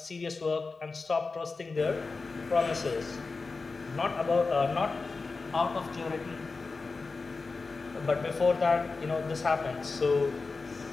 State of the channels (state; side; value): quieter; right; 4.1 dB